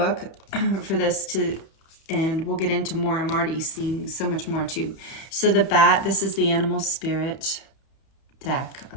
for this and we'll get into more. I'm already seeing so much more too. So the bat, this is the animal spirit deck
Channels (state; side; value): late; right; 31 ms